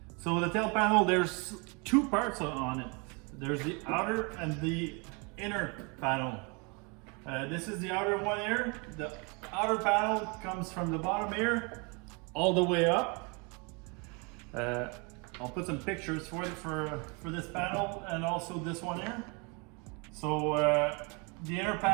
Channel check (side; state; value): left; quieter; 31.8 dB